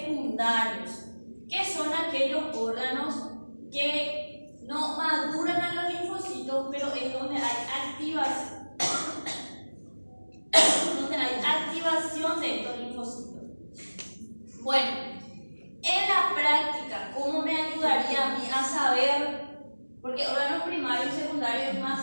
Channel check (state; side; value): inverted; both; correlation -1.00